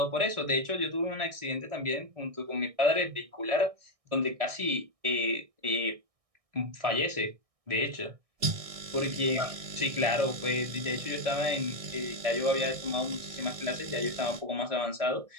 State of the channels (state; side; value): late; left; 1.6 ms